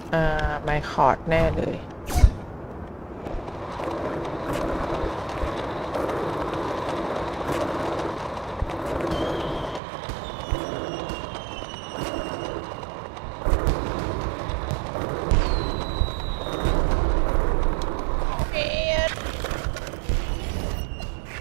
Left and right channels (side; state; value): left; drops out; at 9.8 s